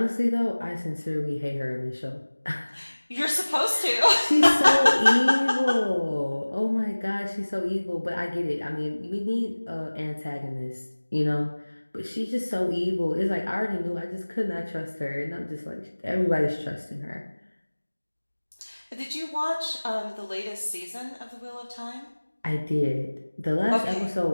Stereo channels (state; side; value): inverted; both; correlation -1.00